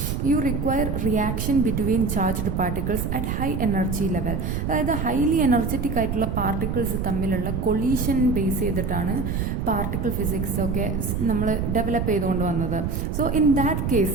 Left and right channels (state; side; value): noise; right; rumble, 1 dB below the sound